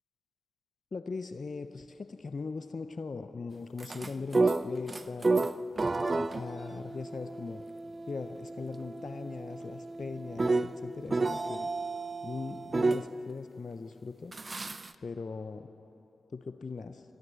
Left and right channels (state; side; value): normal; both; correlation 0.94